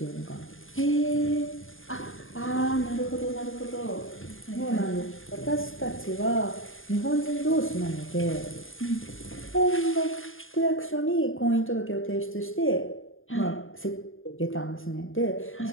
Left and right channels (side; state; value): right; late; 0.59 ms